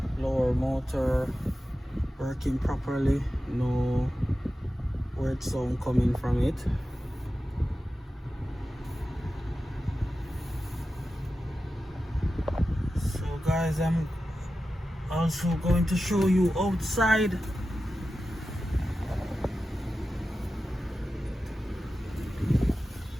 motor working properly, no word sound coming from it. So guys, I'm also going to show you outside.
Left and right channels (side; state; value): both; normal; correlation 0.93